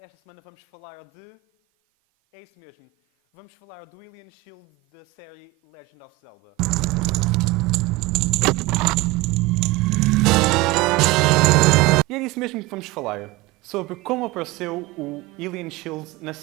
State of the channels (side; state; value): left; quieter; 21.0 dB